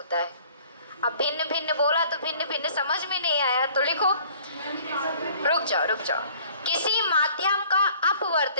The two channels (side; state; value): both; inverted; correlation -0.53